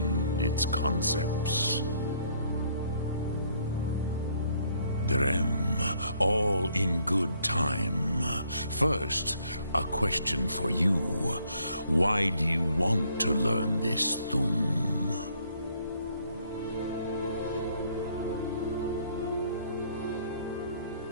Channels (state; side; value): inverted; both; correlation -0.66